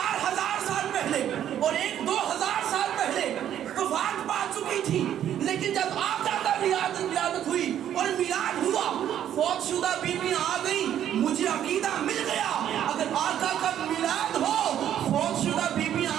साल पहले और एक 2000 साल पहले वफात पा चुकी थी, लेकिन जब आका का विलादत हुई और मिलाद हुआ, फौत शुदा बीबियां आ गई। मुझे अकीदा मिल गया, अगर आका का मिलाद हो, फौत शुदा बीबियां आ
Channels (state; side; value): quieter; left; 10.5 dB